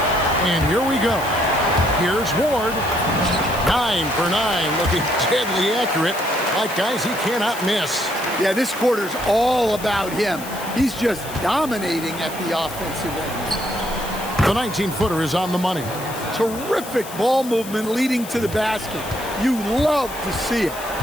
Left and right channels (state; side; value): noise; left; hiss, 13 dB below the sound